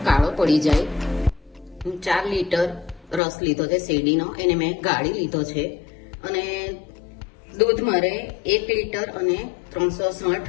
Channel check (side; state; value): right; drops out; at 3.2 s